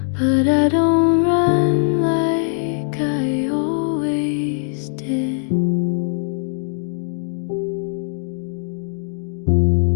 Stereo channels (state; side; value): silent; right; digital silence